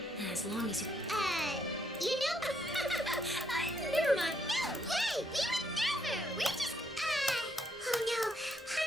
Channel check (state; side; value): normal; both; correlation 0.73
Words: As long as you... You know... Never mind. No way! We would never! We just... Oh no.